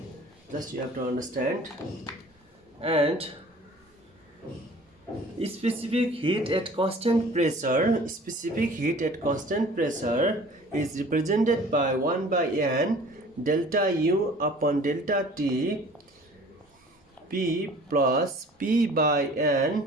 just you have to understand. And specific heat at constant pressure is represented by 1 by n delta U upon delta T P plus P by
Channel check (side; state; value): both; normal; correlation 0.48